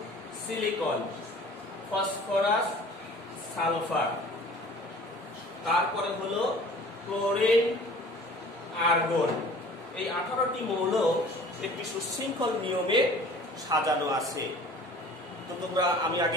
সিলিকন, ফসফরাস, সালফার, তারপরে হলো ক্লোরিন, আর্গন। এই 18টি মৌল একটি সুশৃঙ্খল নিয়মে সাজানো আছে। তো তোমরা, আমি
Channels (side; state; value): both; normal; correlation 0.46